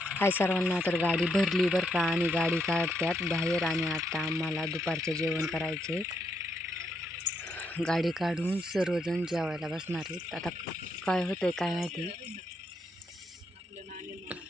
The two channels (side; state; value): both; normal; correlation 0.77